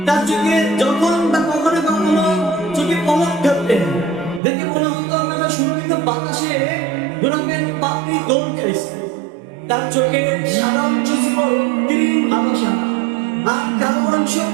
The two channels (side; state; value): left; drops out; at 4.4 s